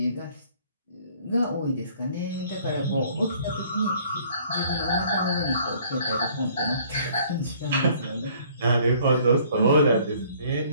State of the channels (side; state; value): both; inverted; correlation -0.58